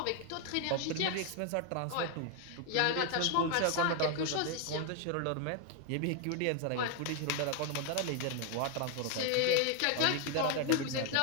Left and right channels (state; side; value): different; both; correlation 0.01